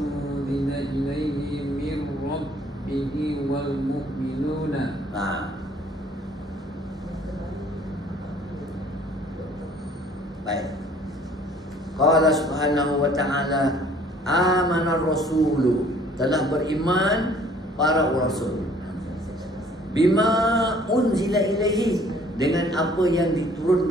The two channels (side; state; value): both; normal; correlation 0.56